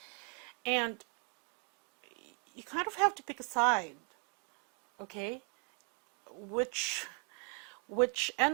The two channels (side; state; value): left; quieter; 38.1 dB